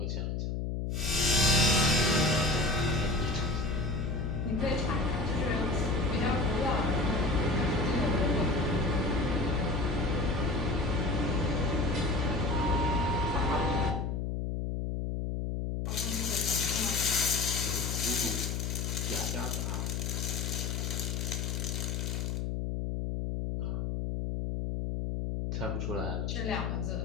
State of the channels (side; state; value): left; noise; hum, 1 dB below the sound